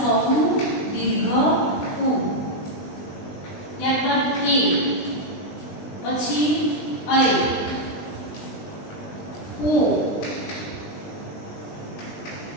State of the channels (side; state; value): right; late; 20 ms